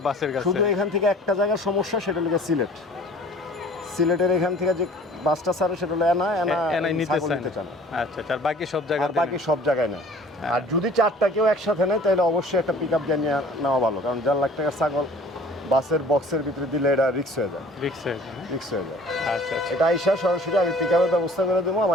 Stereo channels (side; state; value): both; normal; correlation 0.49